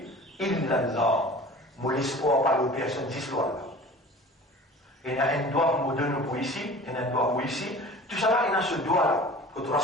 illallah, mon espoir par le personne d'histoire là. Il y a un doigt pour donner pour ici, il y a un doigt pour ici, tout ça là, il y a ce doigt là, que tu vas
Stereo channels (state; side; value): normal; both; correlation 0.42